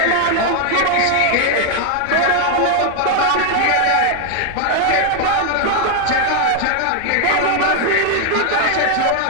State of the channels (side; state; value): both; different; correlation 0.00